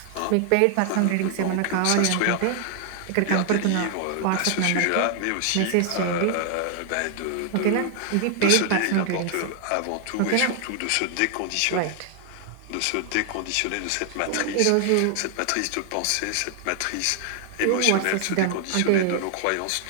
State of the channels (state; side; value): different; both; correlation 0.00